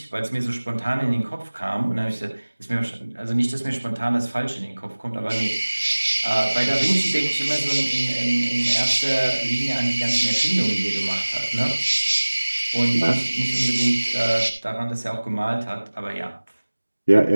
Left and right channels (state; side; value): inverted; both; correlation -1.00